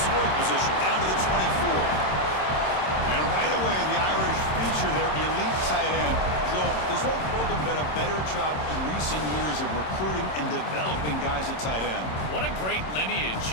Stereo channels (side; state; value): right; late; 27 ms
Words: position down to the 24. And right away, the Irish feature their elite tight end. Joel, this whole program done a better job in recent years of recruiting and developing guys at tight end. What a great lineage